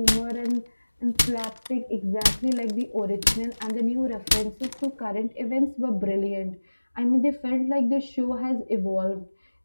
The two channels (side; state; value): both; inverted; correlation -1.00